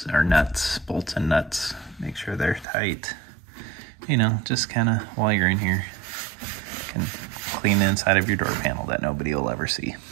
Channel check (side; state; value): left; drops out; at 2.7 s